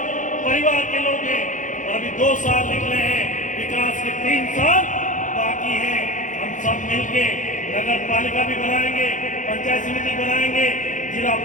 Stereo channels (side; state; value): right; late; 0.37 ms